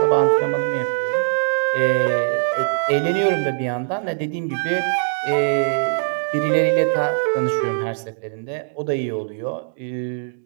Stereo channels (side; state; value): left; silent; digital silence